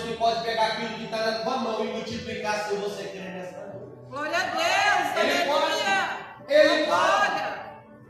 que pode pegar aquilo que está na tua mão e multiplicar se você crer nessa noite. Glória a Deus, Ele aleluia. pode. Ele Glória. pode.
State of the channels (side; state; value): both; identical; correlation 1.00